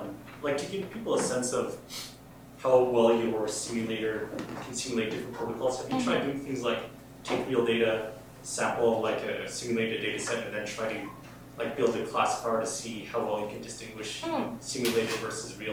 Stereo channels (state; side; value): identical; both; correlation 1.00